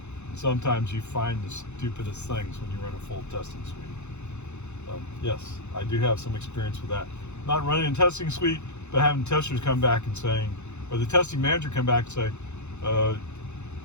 Sometimes you find the stupidest things when you run a full testing suite. Yes, I do have some experience with that. Not running a testing suite, but having testers come back and saying, or the testing manager come back and say,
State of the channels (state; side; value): late; right; 0.82 ms